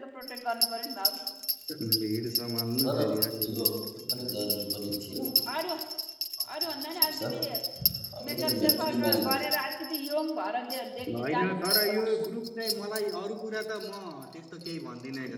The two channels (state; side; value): identical; both; correlation 1.00